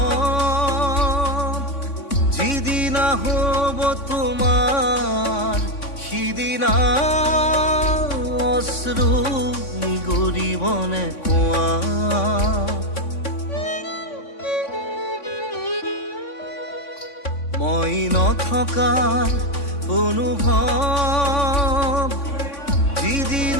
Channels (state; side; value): late; right; 3.5 ms